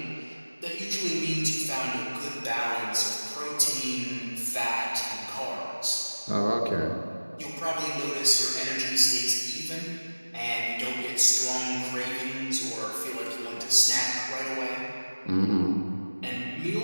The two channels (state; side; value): inverted; both; correlation -1.00